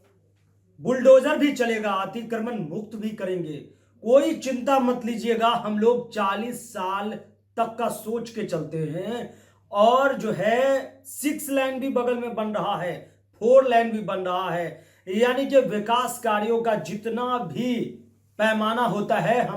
बुलडोजर भी चलेगा, अतिक्रमण मुक्त भी करेंगे, कोई चिंता मत लीजिएगा। हम लोग 40 साल तक का सोच के चलते हैं और जो है 6 लेन भी बगल में बन रहा है, 4 लेन भी बन रहा है, यानी कि विकास कार्यों का जितना भी पैमाना होता है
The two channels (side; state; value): both; identical; correlation 1.00